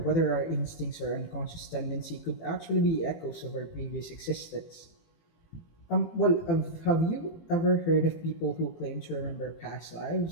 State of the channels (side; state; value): right; late; 18 ms